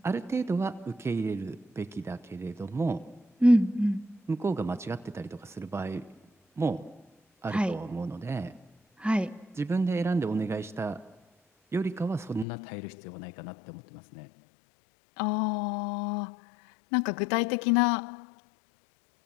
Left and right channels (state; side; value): drops out; right; at 12.5 s